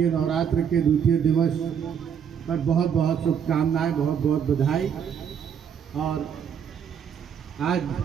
नवरात्र के द्वितीय दिवस पर बहुत बहुत शुभकामनाएं, बहुत बहुत बधाई। और आज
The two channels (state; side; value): quieter; left; 7.8 dB